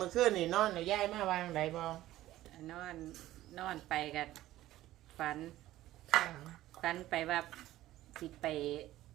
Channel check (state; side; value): quieter; left; 15.1 dB